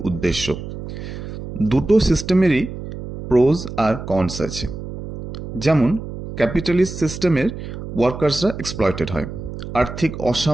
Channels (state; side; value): noise; right; hum, 9 dB below the sound